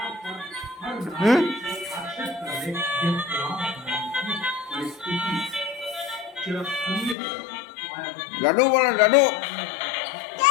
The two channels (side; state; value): right; drops out; at 7.2 s